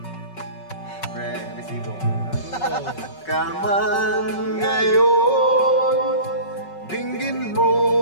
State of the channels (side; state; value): right; late; 5.3 ms